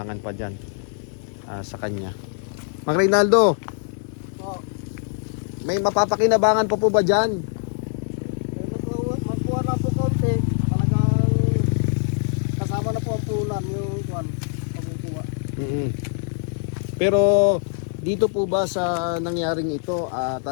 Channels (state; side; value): silent; right; 63 dB below the other